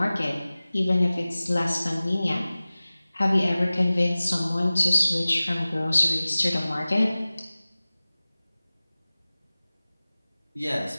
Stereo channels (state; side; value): inverted; both; correlation -0.98